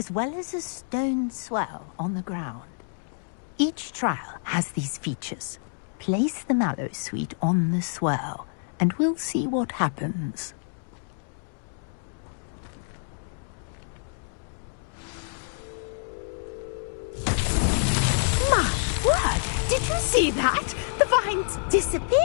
well as a stone swell on the ground. Each trial has these features. Place the Mallowsweet on the swell, and we'll see what happens. My word! Did you see that? The vines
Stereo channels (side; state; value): right; silent; digital silence